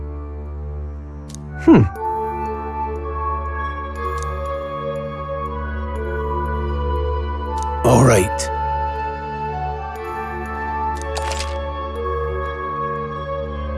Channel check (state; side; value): identical; both; correlation 1.00